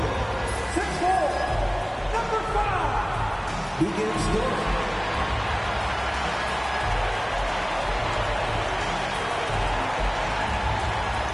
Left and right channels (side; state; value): both; identical; correlation 1.00